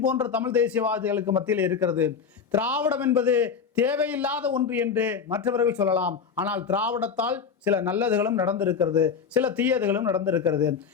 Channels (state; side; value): quieter; right; 6.3 dB